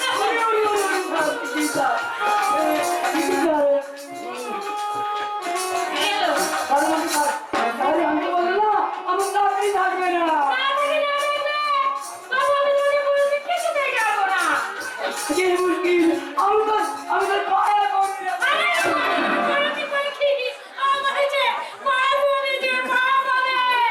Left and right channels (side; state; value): both; identical; correlation 1.00